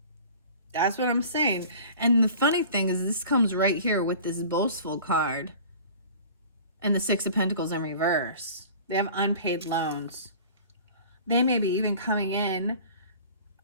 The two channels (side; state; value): both; inverted; correlation -0.44